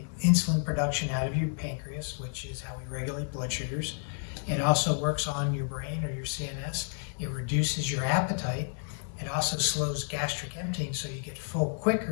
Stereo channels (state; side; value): silent; right; 57 dB below the other